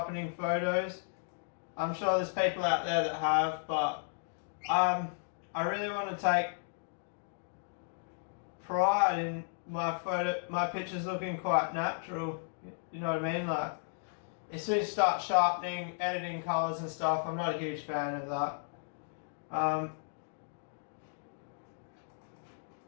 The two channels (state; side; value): silent; right; digital silence